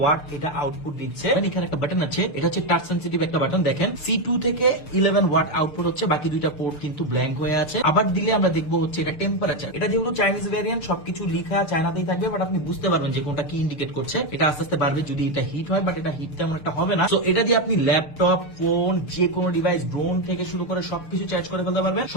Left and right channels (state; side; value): late; right; 6.7 ms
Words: এটা আউটপুট দিচ্ছে। এখানে একটা বাটন আছে, এটা হচ্ছে টাচ সেনসিটিভ একটা বাটন। দেখেন C2 থেকে 11 ওয়াট আউটপুট হচ্ছে, বাকি দুইটা পোর্ট কিন্তু ব্ল্যাঙ্ক হয়ে আছে। আবার দিলে আমরা দেখবো হচ্ছে এটা টেম্পারেচার। এটা যেহেতু চাইনিজ ভ্যারিয়েন্ট সবকিছু লিখা চায়নাতেই থাকবে, বাট আপনি বুঝতে পারবেন যে কোনটা কি ইন্ডিকেট করছে। এটা আস্তে আস্তে বাড়বে যদি এটা হিট হয়, বাট এটা হিট তেমন একটা হবে না। তো এটা দিয়ে আপনি ল্যাপটপ, ফোন, যে কোনো ডিভাইস, ড্রোন থেকে শুরু করে সবকিছু চার্জ করে ফেলতে পারবেন।